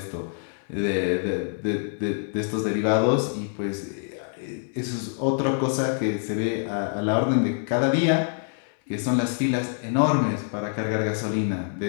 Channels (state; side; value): silent; right; 61 dB below the other